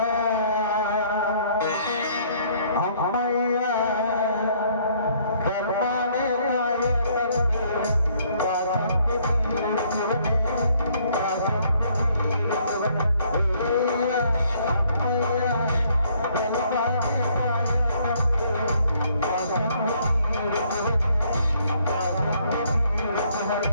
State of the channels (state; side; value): inverted; both; correlation -0.65